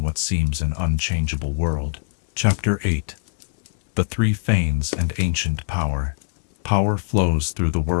what seems an unchangeable world. Chapter 8. The Three Fanes and Ancient Power. Power flows through the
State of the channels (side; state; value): right; silent; digital silence